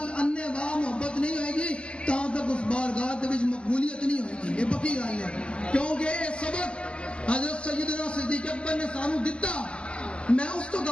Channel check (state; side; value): late; right; 0.054 ms